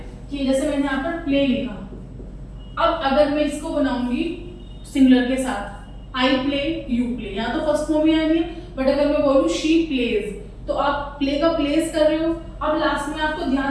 कि जैसे मैंने यहाँ पर प्ले लिखा, अब अगर मैं इसको बनाऊंगी सिंगुलर के साथ, आई प्ले, यू प्ले, यहाँ तो फर्स्ट फॉर्म ही आनी है, बट अगर मैं बोलूँ शी प्लेज तो आप प्ले का प्लेस कर रहे हो। अब लास्ट में आपको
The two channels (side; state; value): both; identical; correlation 1.00